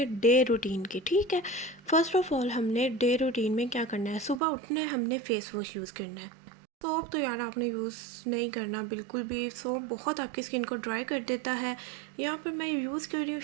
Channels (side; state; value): left; drops out; at 4.4 s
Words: डे रूटीन की। ठीक है, फर्स्ट ऑफ ऑल हमने डे रूटीन में क्या करना है, सुबह उठना है, हमने फेस वॉश यूज़ करना है। सोप तो यार आपने यूज़ नहीं करना बिल्कुल भी, सोप बहुत आपकी स्किन को ड्राई कर देता है। यहाँ पर मैं यूज़ कर रही हूँ